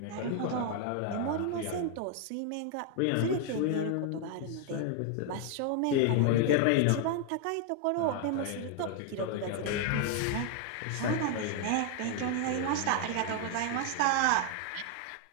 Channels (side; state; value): both; different; correlation 0.00